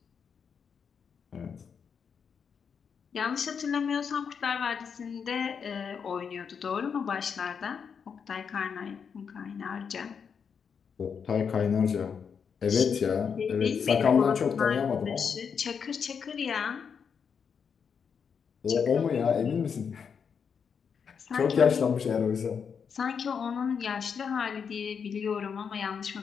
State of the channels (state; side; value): quieter; right; 6.6 dB